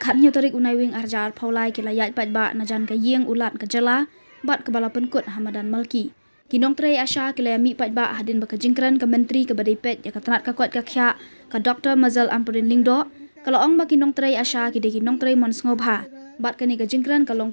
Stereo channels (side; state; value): both; inverted; correlation -1.00